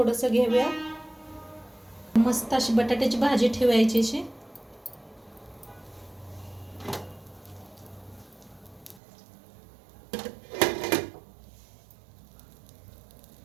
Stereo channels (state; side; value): drops out; left; at 9.0 s